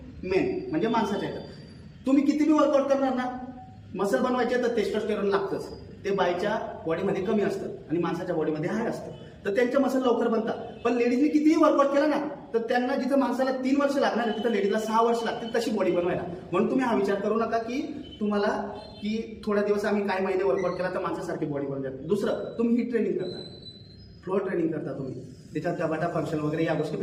मेन, म्हणजे माणसाच्या याच्यात तुम्ही किती बी वर्कआउट करणार ना, मसल बनवायचे तर टेस्टोस्टेरोन लागतंच, ते बाईच्या बॉडीमध्ये कमी असतं आणि माणसाच्या बॉडीमध्ये हाय असतं, तर त्यांच्या मसल लवकर बनतात। पण लेडीजने कितीही वर्कआउट केला ना, तर त्यांना जिथं माणसाला 3 वर्ष लागणार आहे तिथं लेडीजला 6 वर्ष लागतील तशी बॉडी बनवायला। म्हणून तुम्ही हा विचार करू नका की तुम्हाला की थोड्या दिवस आम्ही काही महिने वर्कआउट केला तर माणसासारखी बॉडी बनवून जाते। दुसरं, तुम्ही ही ट्रेनिंग करता, फ्लोअर ट्रेनिंग करता तुम्ही, त्याच्यात गटाटा फंक्शन वगैरे या गोष्टी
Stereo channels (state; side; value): identical; both; correlation 1.00